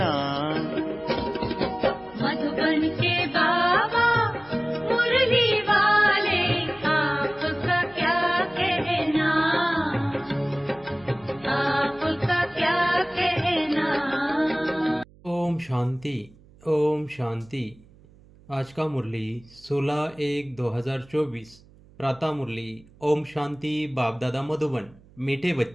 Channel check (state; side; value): noise; right; hum, 26 dB below the sound